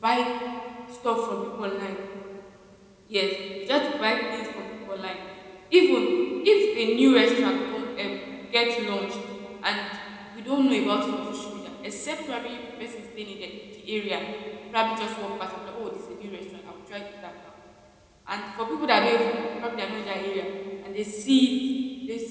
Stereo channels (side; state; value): both; identical; correlation 1.00